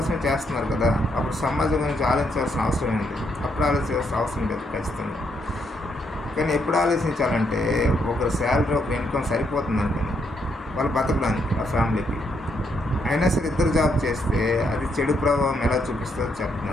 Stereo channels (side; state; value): both; normal; correlation 0.76